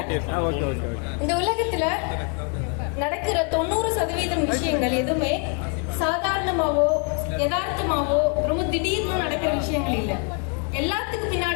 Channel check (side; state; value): right; quieter; 38.1 dB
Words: இந்த உலகத்துல நடக்கிற 90% விஷயங்கள் எதுவுமே சாதாரணமாவோ யதார்த்தமாவோ ரொம்ப திடீர்னு நடக்கிற விஷயங்கள் இல்லை. எல்லாத்துக்கு